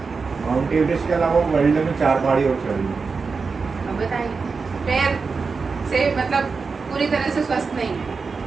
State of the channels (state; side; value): quieter; left; 4.8 dB